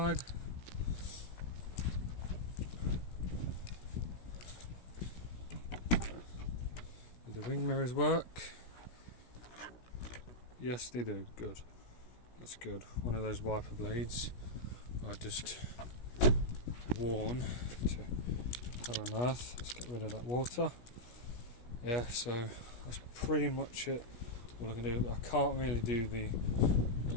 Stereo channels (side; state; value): right; late; 16 ms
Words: Do the wing mirrors work? Yes, they do. Good. That's good. One of those wiper blades I just worn to hell on earth. Let's get rid of that water. Yeah, so that's pretty much it. All I can do, I can't really do the,